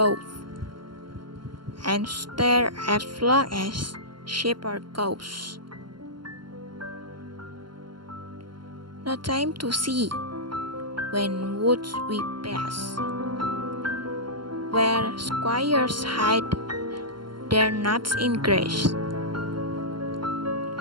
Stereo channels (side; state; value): left; late; 0.72 ms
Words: and stare as long as shepherd goes. No time to see when woods we pass, where squires hide their nuts in grass.